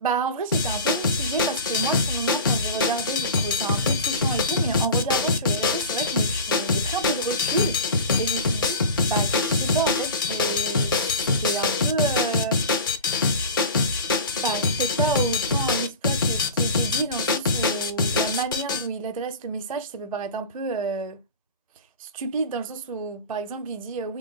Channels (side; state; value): both; inverted; correlation -0.31